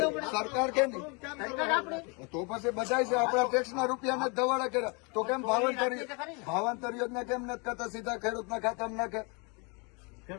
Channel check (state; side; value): quieter; right; 32.1 dB